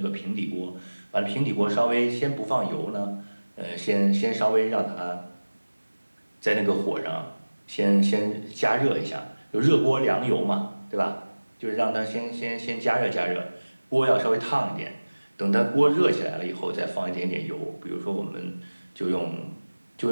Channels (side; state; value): both; inverted; correlation -1.00